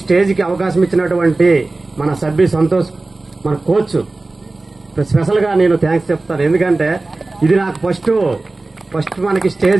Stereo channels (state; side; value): quieter; left; 3.2 dB